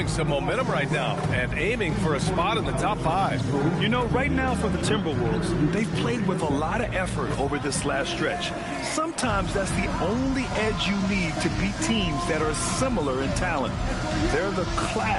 some momentum right now and aiming for a spot in the top 5. You know, right now for the Timberwolves, they've played with a lot of effort over this last stretch. Sometimes that's the only edge you need to beat teams that are similar in talent. They're the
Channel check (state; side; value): identical; both; correlation 1.00